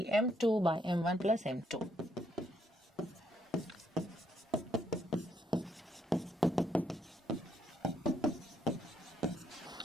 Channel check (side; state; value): both; normal; correlation 0.74